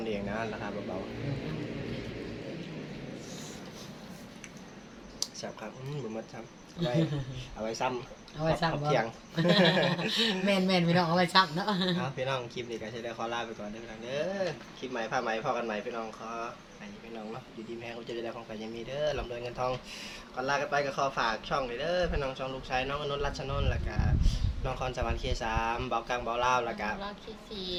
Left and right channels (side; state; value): both; identical; correlation 1.00